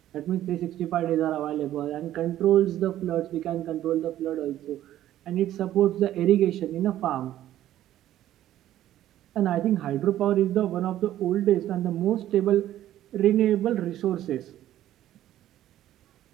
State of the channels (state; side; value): quieter; left; 12.9 dB